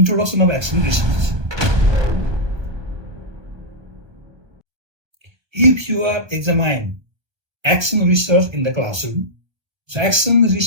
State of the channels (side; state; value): left; late; 1.2 ms